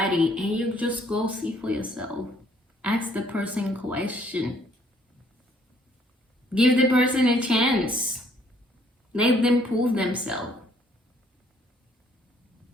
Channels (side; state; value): both; normal; correlation 0.64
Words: and you just go see for yourself, ask the person question, give the person a chance, let them prove themselves.